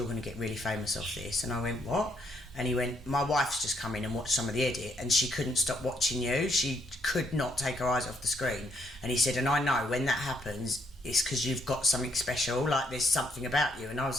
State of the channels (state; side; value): normal; both; correlation 0.71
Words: going to get really famous off this. And I went, what? And he went, my wife's just come in and watched some of the edit and she couldn't stop watching you. She could not take her eyes off the screen. And he said, and I know when that happens, it's because you've got something special, like there's something about you. And I